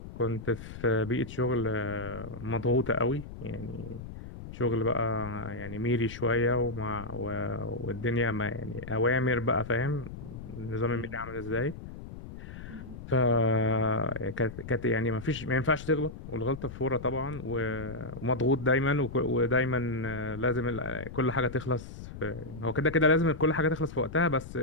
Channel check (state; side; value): noise; left; rumble, 12 dB below the sound